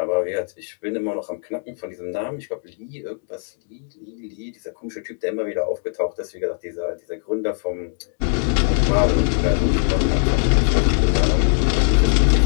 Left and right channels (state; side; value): silent; right; digital silence